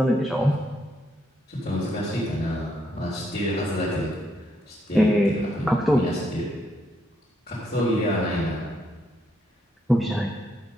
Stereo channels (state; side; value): normal; both; correlation 0.76